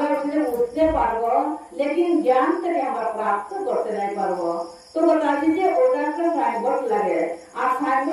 উঠে উঠতে পারবো लेकिन ज्ञान থেকে আমরা প্রাপ্ত করতে নাই পারবো তো बताছি যে ওটা একটা সাইনবোর্ড লাগে আর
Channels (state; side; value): identical; both; correlation 1.00